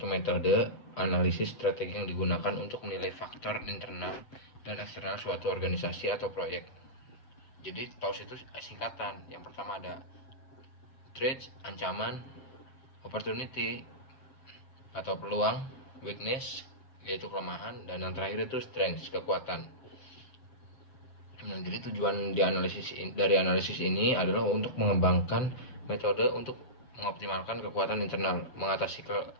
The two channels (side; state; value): right; late; 7.6 ms